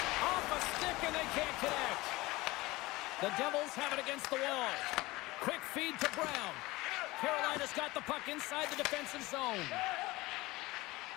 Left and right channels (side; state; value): right; quieter; 20.5 dB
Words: Off a stick, and they can't connect. The Devils have it against the wall. Quick feed to Brown. Carolina's got the puck inside the defensive zone.